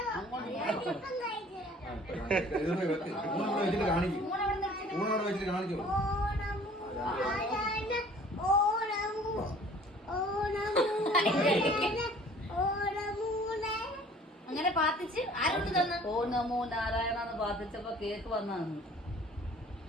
അങ്ങനെ പാത്തിച്ച് ആരോട് തന്നു? ഓ നമോ നാരായണന്ന് പാത്തിച്ചപ്പോ കേക്ക് വന്നാന്ന്.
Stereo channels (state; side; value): normal; both; correlation 0.51